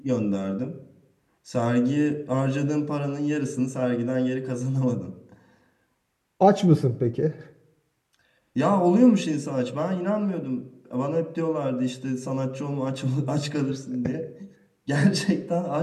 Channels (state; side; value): identical; both; correlation 1.00